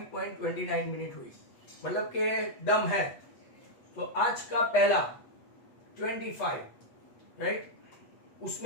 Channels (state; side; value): late; right; 8.2 ms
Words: मिनट हुई, मतलब के दम है. तो आज का पहला 25, राइट,